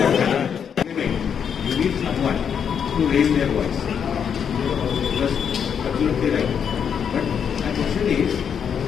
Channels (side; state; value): right; quieter; 7.6 dB